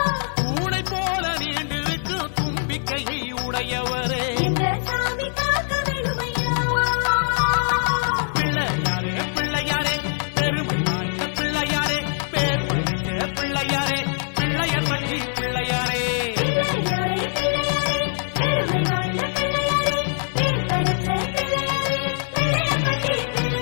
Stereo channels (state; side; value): silent; right; 63 dB below the other